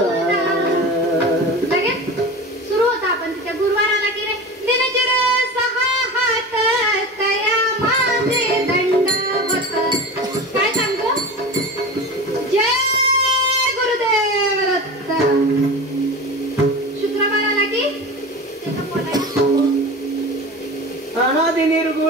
लगेच सुरू होता आपण तिच्या गुरुवाराला की रे दिनचर 6 हात तया माझे दंडवत. काय सांगतो? जय गुरुदेव दत्त. शुक्रवाराला की त्याचा पोटा अनादि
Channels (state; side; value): normal; both; correlation 0.31